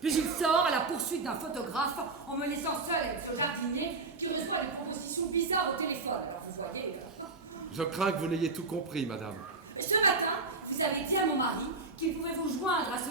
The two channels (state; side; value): quieter; left; 3.7 dB